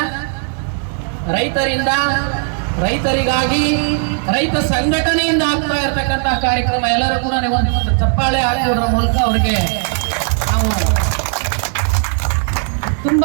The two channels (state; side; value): silent; left; 57 dB below the other